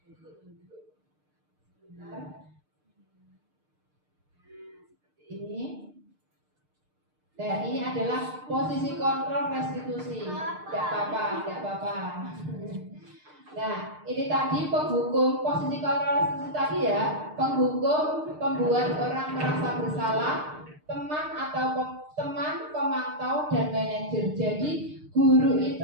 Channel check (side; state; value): left; late; 6.6 ms